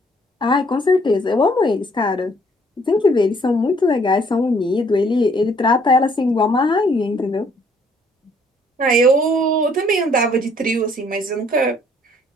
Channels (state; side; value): normal; both; correlation 0.63